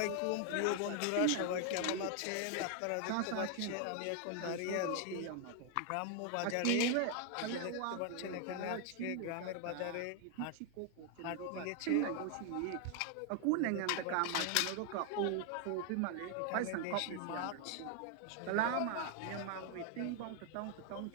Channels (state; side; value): different; both; correlation 0.01